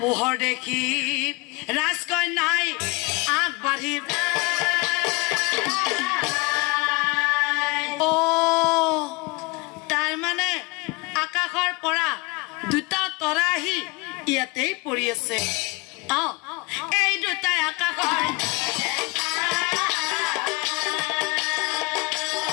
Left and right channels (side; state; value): right; quieter; 26.4 dB